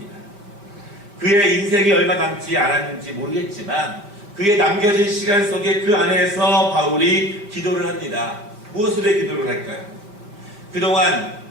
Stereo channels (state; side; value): late; left; 5.0 ms